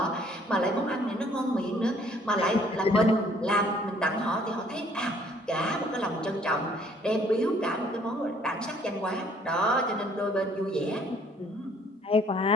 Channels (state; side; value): normal; both; correlation 0.61